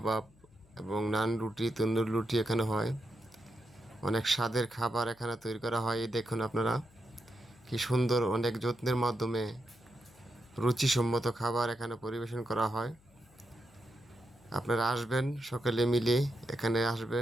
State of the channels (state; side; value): noise; left; hum, 29 dB below the sound